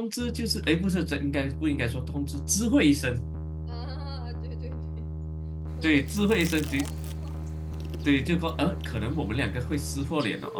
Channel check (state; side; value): identical; both; correlation 1.00